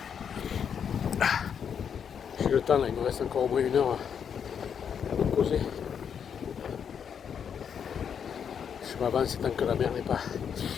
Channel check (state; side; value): quieter; right; 7.6 dB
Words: J'ai le temps là, il me reste encore au moins 1 heure à me poser. Je m'avance tant que la mer n'est pas.